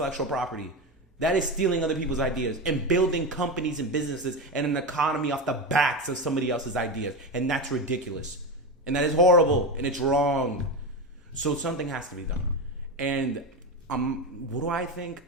property. That is stealing other people's ideas and building companies and businesses and an economy off the backs of somebody else's ideas. And that's ridiculous. And that is horrible. And it's wrong. So something has to be done. And what do I think?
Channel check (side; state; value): both; normal; correlation 0.17